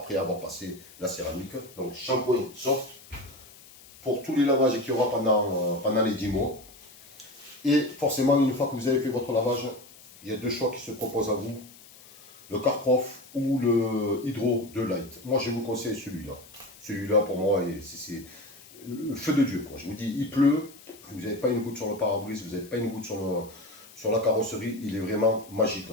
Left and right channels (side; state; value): left; noise; hiss, 22 dB below the sound